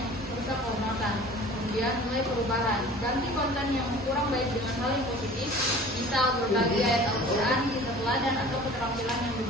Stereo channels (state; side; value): normal; both; correlation 0.44